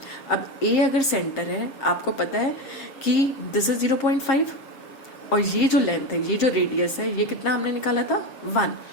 अब A अगर सेंटर है, आपको पता है कि दिस इज 0.5, और ये जो लेंथ है, ये जो रेडियस है, ये कितना हमने निकाला था? 1।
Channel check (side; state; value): right; late; 7.4 ms